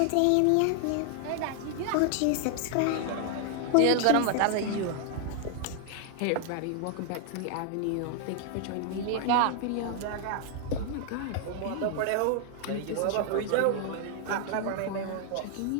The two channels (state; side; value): different; both; correlation 0.00